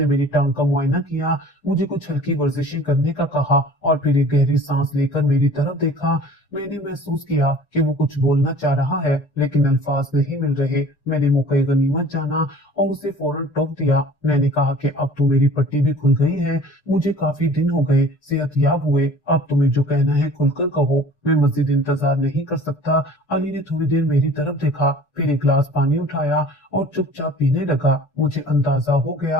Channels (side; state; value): right; late; 6.7 ms